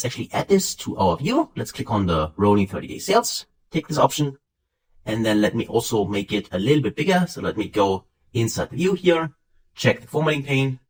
actually add this to our view. Let's click on the rolling 30-day sales, take this option, and then let me also make it a little bit bigger. So let me go inside the view here, check the formatting pane,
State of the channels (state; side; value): identical; both; correlation 1.00